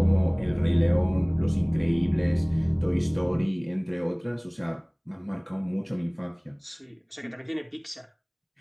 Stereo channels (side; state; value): both; identical; correlation 1.00